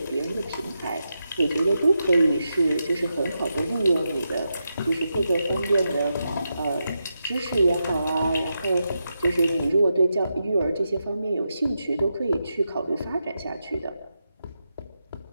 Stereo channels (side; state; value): both; inverted; correlation -0.87